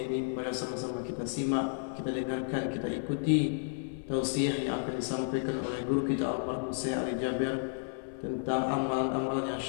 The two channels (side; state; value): right; silent; digital silence